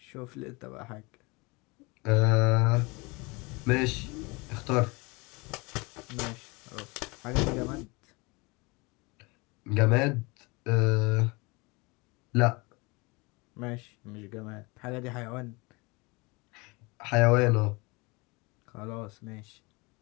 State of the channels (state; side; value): quieter; right; 26.5 dB